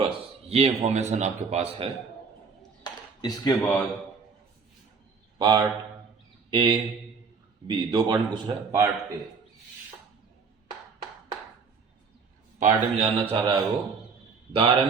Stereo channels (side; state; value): left; quieter; 5.3 dB